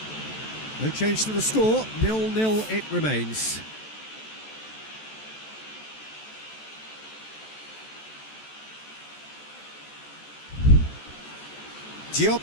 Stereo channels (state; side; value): late; right; 14 ms